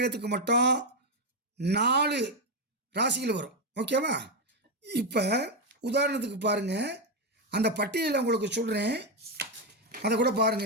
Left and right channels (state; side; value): normal; both; correlation 0.05